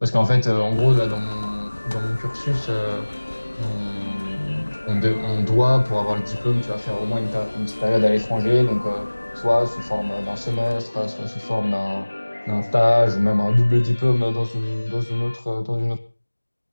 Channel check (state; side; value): inverted; both; correlation -1.00